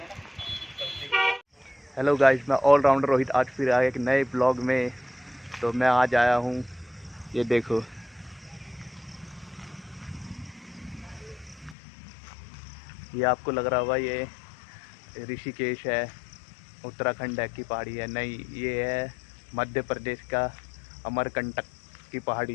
हेलो गाइस, मैं ऑलराउंडर रोहित आज फिर आया एक नए ब्लॉग में। तो मैं आज आया हूँ, ये देखो, ये आपको लग रहा होगा ये ऋषिकेश है, उत्तराखंड है की पहाड़ी है। नहीं, ये है मध्य प्रदेश का अमरकंटक की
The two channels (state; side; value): drops out; right; at 11.8 s